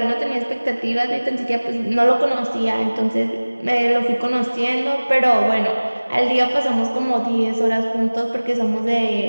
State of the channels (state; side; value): inverted; both; correlation -1.00